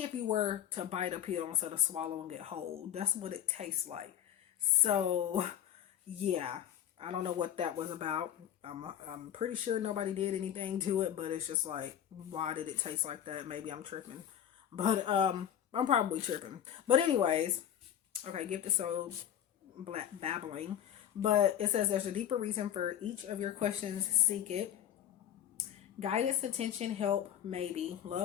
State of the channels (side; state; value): right; quieter; 10.2 dB